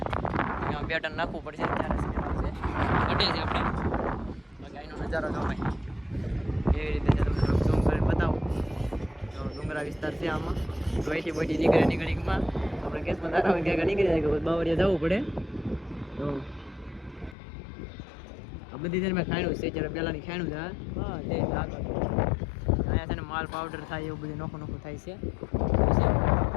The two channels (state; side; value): drops out; right; at 17.4 s